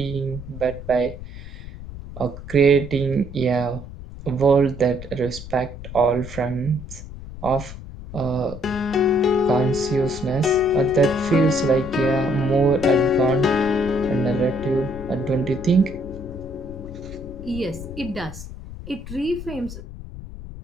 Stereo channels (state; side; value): noise; left; rumble, 12 dB below the sound